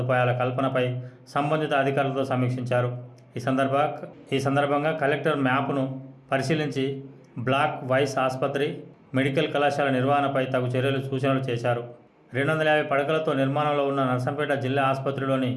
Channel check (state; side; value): identical; both; correlation 1.00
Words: కల్పనపై సంబంధిత అధికారులతో సమీక్షించారు. ఈ సందర్భంగా కలెక్టర్ మ్యాప్ను పరిశీలించి బ్లాక్ వైస్ ఆసుపత్రి, మెడికల్ కళాశాల నిర్వహణపై తగు చర్యలు సూచనలు చేశారు. 250 పడకలతో నిర్మాణంలో ఉన్న నర్సంపేట జిల్లా ఆసుపత్రిలోని